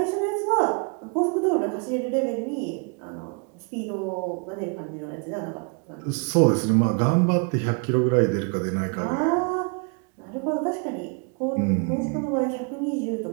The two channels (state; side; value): quieter; left; 36.4 dB